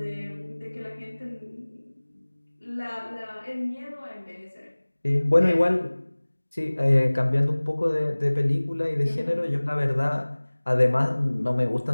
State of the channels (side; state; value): both; inverted; correlation -1.00